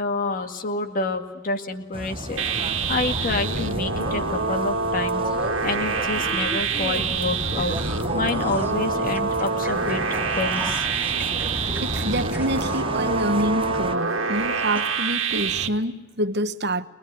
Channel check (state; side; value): normal; both; correlation 0.04